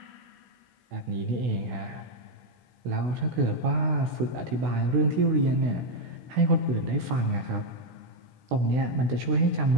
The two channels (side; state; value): left; late; 16 ms